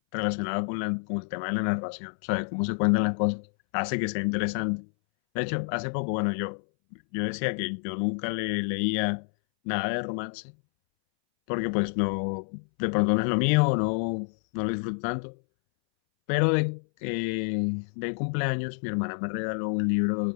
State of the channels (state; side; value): silent; right; 59 dB below the other